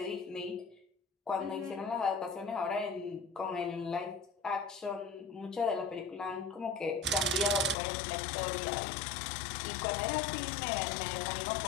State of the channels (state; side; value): drops out; right; at 7.8 s